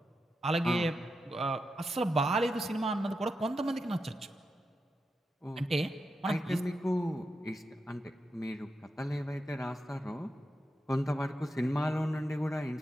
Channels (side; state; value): both; normal; correlation 0.87